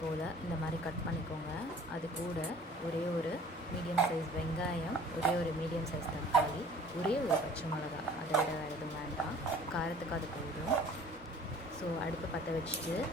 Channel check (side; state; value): both; normal; correlation 0.49